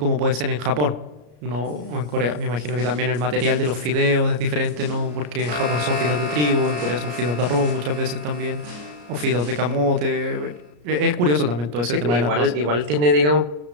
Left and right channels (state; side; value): late; left; 34 ms